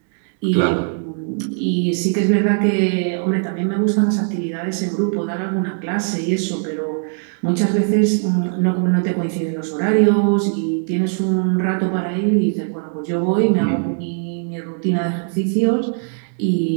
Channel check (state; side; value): silent; left; 58 dB below the other